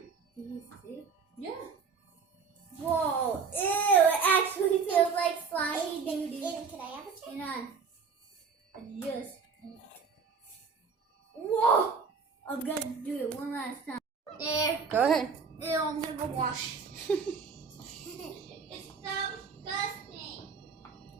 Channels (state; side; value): quieter; left; 5.5 dB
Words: Can you use two? Yeah. Whoa, ew, it actually feels like slimy doo-doo. Can I have a check? Hang on. Just. Whoa! I'm gonna do it one last time. There. Go ahead. Ew, I'm gonna go wash. It's so disgusting.